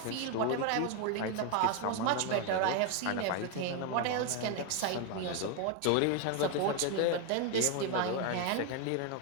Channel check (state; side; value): different; both; correlation 0.01